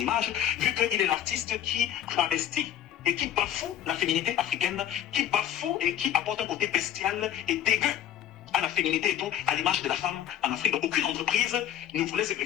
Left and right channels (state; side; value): quieter; right; 10.7 dB